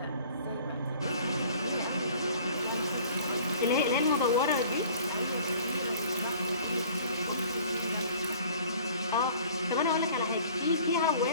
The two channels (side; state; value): both; inverted; correlation -0.50